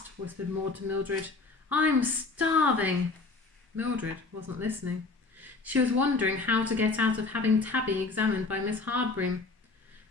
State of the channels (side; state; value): right; quieter; 3.8 dB